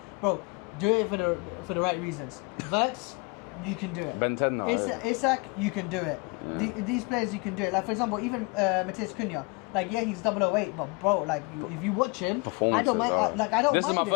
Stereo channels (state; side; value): quieter; right; 29.8 dB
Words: Bro, do it for the right reasons. Verts, you can do it. Ben 10 now. Isak, you can do it. These players, you can do it. Like, for example, even Matheus Cunha. Like, yeah, he's 008, but bro, like, if you watch him, I don't mind. I don't mind